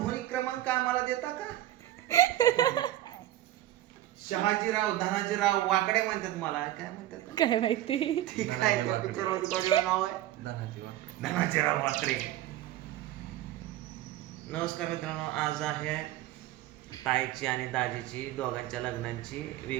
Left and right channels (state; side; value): quieter; left; 14.0 dB